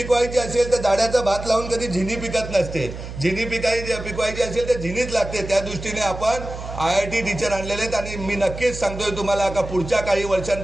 असेल तर दाड्याचा भात लावून कधी झिनी पिकत नसते. झिनी पिकवायची असेल तर झिनीच लागते. त्या दृष्टीने आपण IIT टीचर आणलेले आहेत. आणि मी नक्कीच सांगतोय तुम्हाला का पुढच्या काही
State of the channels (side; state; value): right; noise; hum, 10 dB below the sound